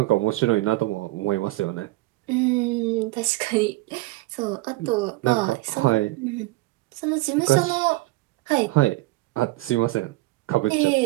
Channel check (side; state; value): left; quieter; 19.9 dB